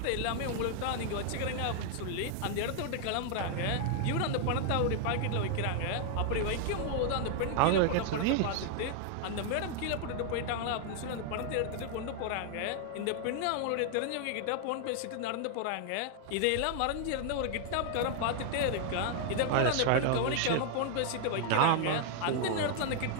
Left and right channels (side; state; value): both; different; correlation 0.00